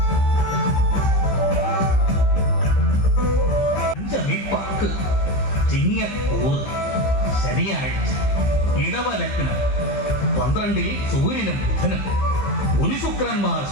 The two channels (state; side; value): late; right; 15 ms